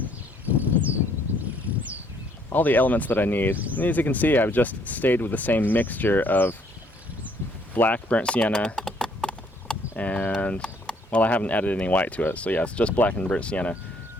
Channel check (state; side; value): normal; both; correlation 0.65